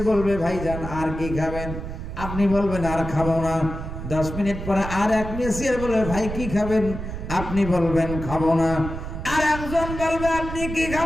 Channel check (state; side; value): noise; right; rumble, 7 dB below the sound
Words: বলবে ভাইজান আর কি খাবেন? আপনি বলবেন আর খাবো না। 10 মিনিট পরে আর এক মেসিয়ার বলবে ভাই কি খাবেন? আপনি বলবেন খাবো না। আর একজন বলবে আপনি কি